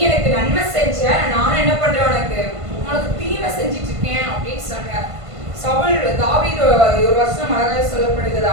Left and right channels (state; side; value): late; left; 1.5 ms